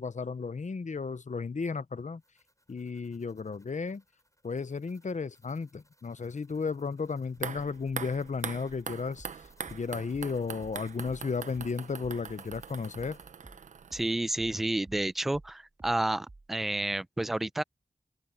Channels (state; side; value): normal; both; correlation 0.74